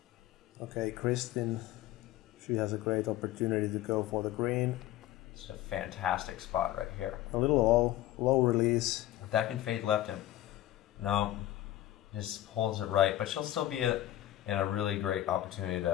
Okay, Kristin, she has a great opportunity to go for the green. It's a fantastic spot right here. A little low release. That can fade left him. No, just holds it right, but she'll still be in a really great opportunity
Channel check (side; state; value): right; quieter; 14.2 dB